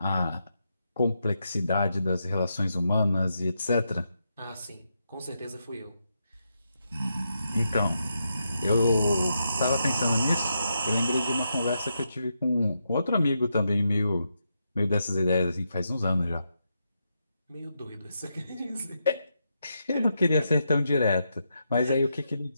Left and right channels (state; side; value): inverted; both; correlation -0.83